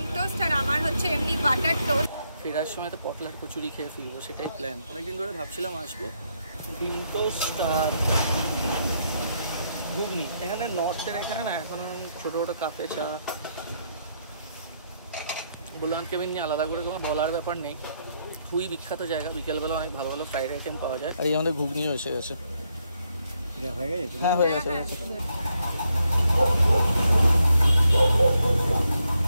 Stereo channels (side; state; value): both; inverted; correlation -0.77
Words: টোস্ট, আর আমার হচ্ছে এমনি বাটার টোস্ট। ফেরার সময় তো পটলার কচুরি খেয়ে ফিরবো, সেটাই প্ল্যান। অনেকদিন ধরে ভাবছিলাম আসবো। ডিম টোস্ট আর ঘুগনি। এখানে নর্থের এখানে না এখন ছোটো ছোটো কাপে চা। ভোলানাথ কেবিন নিয়ে আলাদা করে কোনো বলার ব্যাপার নেই, খুবই বিখ্যাত জায়গা। বিকেলবেলা অনেক ভালো ভালো ফ্রাইড আইটেম পাওয়া যায়। আর এই আমাদের ঘুগনিও এসে গেছে। হ্যাঁ, হয়ে গেছে।